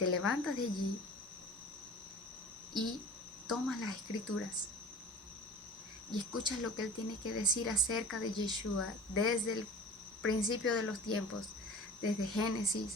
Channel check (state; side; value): normal; both; correlation 0.41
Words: levantas de allí y tomas las escrituras y escuchas lo que Él tiene que decir acerca de Yeshua desde el principio de los tiempos, desde